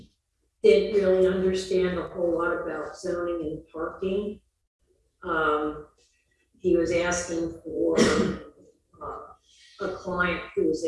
didn't really understand a whole lot about zoning and parking. He was asking for a client who was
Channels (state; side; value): identical; both; correlation 1.00